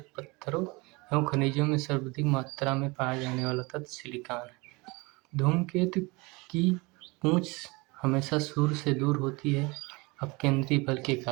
पत्थरों एवं खनिजों में सर्वाधिक मात्रा में पाया जाने वाला तत्व सिलिकॉन है। धूमकेतु की पूंछ हमेशा सूर्य से दूर होती है अपकेंद्री बल के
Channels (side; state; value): left; quieter; 25.7 dB